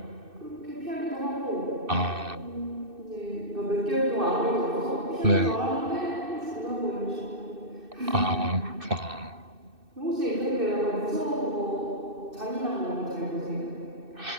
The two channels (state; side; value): late; left; 2.6 ms